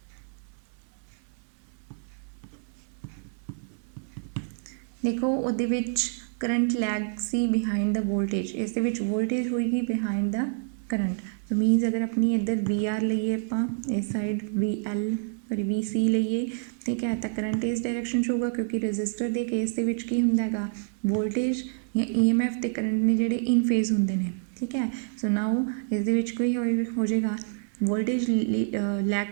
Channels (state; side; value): silent; left; 60 dB below the other